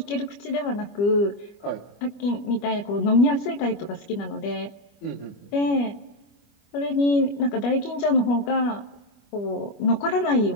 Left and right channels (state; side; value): late; right; 25 ms